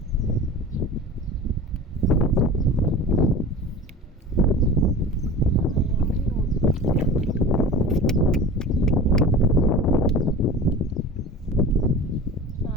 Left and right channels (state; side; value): normal; both; correlation 0.36